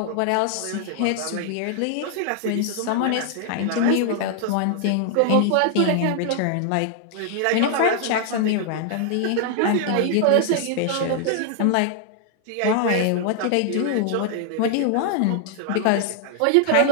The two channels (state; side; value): different; both; correlation 0.00